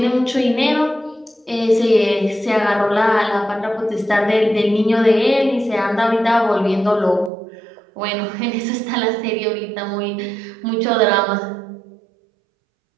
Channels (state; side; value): drops out; left; at 7.3 s